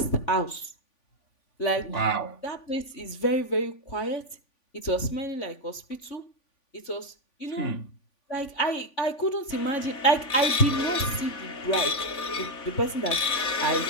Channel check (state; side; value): late; right; 3.5 ms